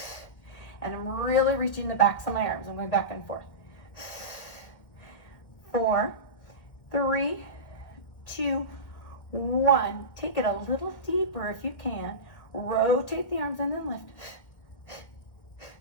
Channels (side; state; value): right; late; 1.6 ms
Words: And I'm really reaching the backs of my arms. I'm going back and forth. 4, 3, 2, 1. Take it a little deeper if you can. Rotate the arms and then lift.